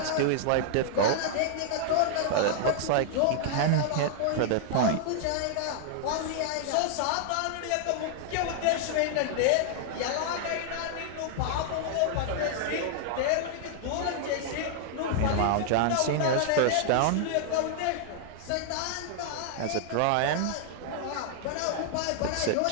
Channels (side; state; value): both; different; correlation -0.01